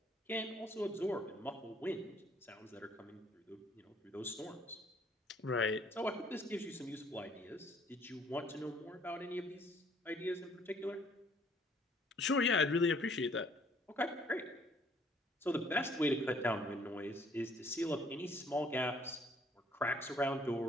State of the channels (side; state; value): both; normal; correlation 0.62